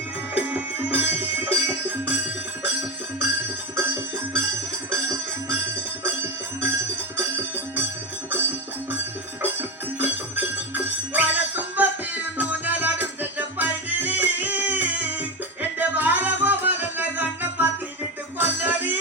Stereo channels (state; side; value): normal; both; correlation 0.15